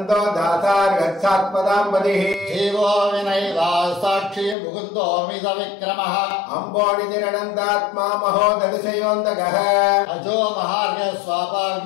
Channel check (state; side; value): drops out; right; at 4.5 s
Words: दासार्गच्छात्पदाम्बदिः जीवो विनयिता साक्षी मुकुन्दोऽमित विक्रमः अम्बोनिधिरनन्दात्मा महोदधिशयोऽन्तकः अजो महार्घ